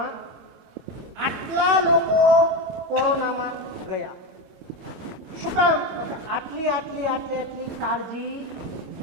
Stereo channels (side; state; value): left; late; 26 ms